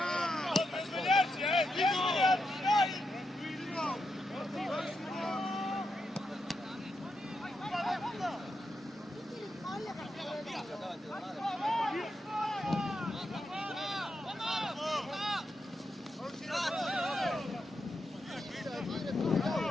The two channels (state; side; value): normal; both; correlation 0.85